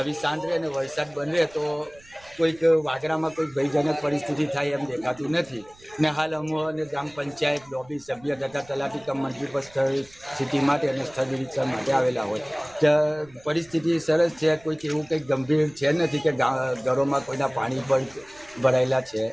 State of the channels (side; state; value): right; noise; rumble, 26 dB below the sound